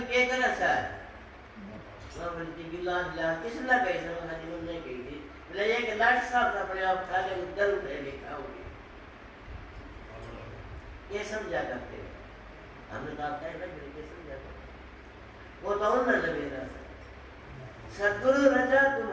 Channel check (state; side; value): identical; both; correlation 1.00